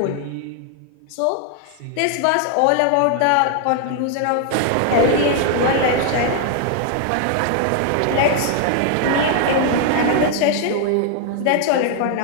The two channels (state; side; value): different; both; correlation 0.00